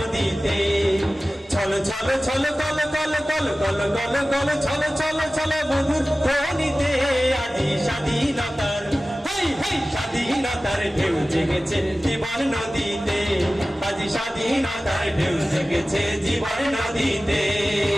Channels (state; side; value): normal; both; correlation 0.96